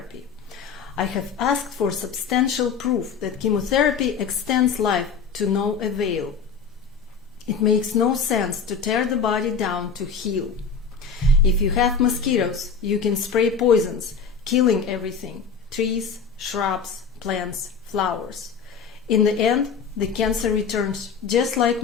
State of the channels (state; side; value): quieter; right; 5.8 dB